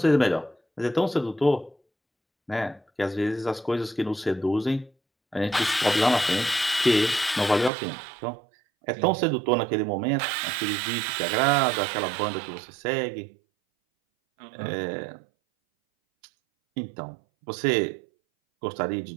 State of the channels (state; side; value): drops out; left; at 7.7 s